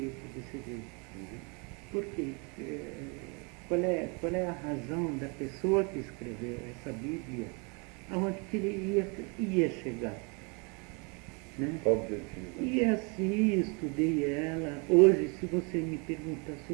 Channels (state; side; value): quieter; left; 32.8 dB